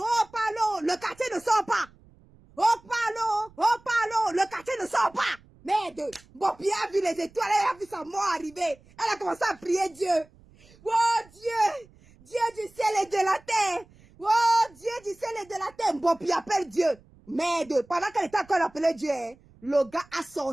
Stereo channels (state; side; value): noise; right; rumble, 27 dB below the sound